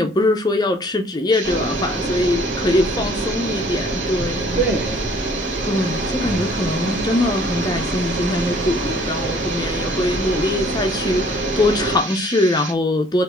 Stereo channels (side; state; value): both; normal; correlation 0.57